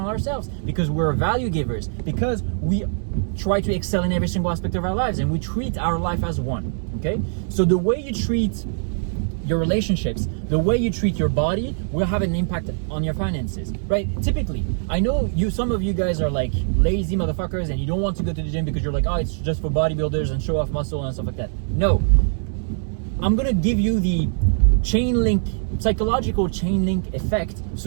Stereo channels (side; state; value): left; silent; digital silence